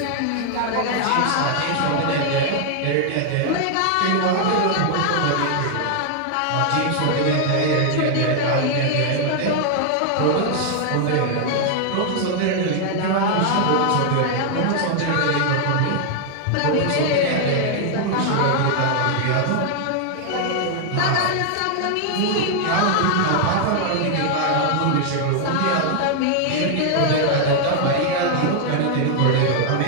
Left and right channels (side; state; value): both; different; correlation 0.00